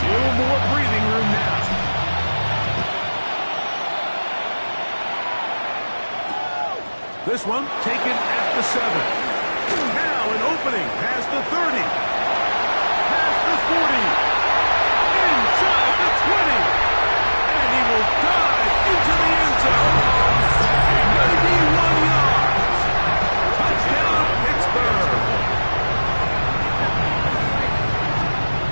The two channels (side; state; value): both; inverted; correlation -1.00